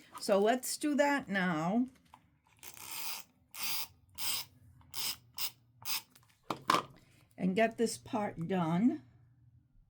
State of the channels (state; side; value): identical; both; correlation 1.00